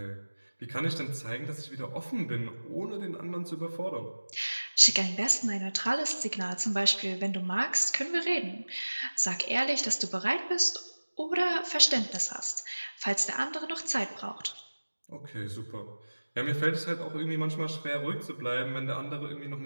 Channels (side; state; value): both; inverted; correlation -1.00